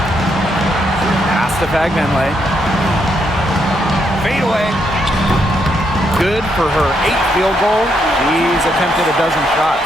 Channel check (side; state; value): both; normal; correlation 0.77